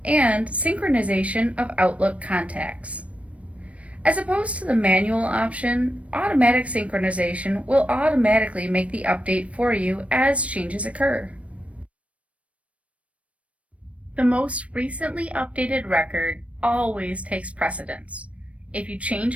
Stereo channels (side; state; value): left; late; 0.064 ms